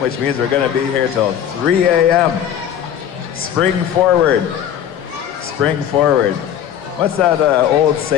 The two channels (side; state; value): right; quieter; 9.7 dB